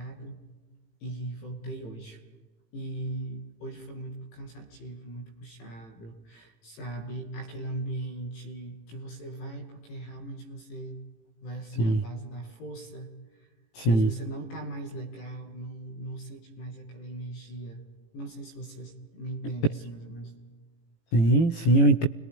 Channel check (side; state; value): right; late; 18 ms